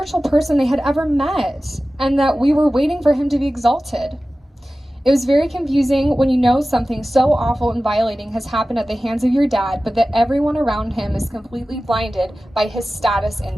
person they had ever met, and that we were waiting for him to be exalted. It was very confusing when you know something so awful and violating has happened at the hands of your dad, but that everyone around him is completely blinded by his status in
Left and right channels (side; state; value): both; normal; correlation 0.96